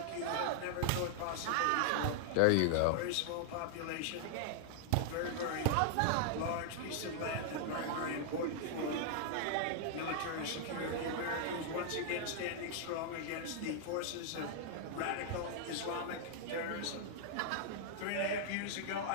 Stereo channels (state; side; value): different; both; correlation -0.01